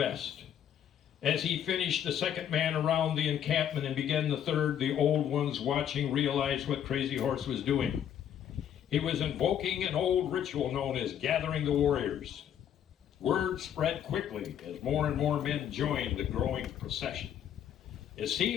As he finished the second man around the encampment and began the third, the old ones watching realized what Crazy Horse was doing. He was invoking an old ritual known as gathering the warriors. Word spread quickly as more and more men joined the growing procession. It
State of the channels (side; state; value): right; quieter; 9.6 dB